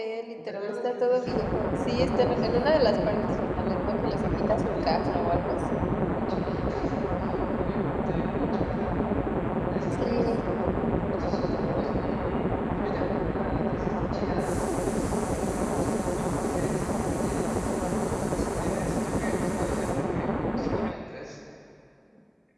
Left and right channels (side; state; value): both; identical; correlation 1.00